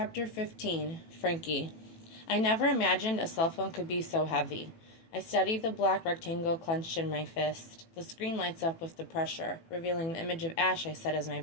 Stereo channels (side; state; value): right; late; 18 ms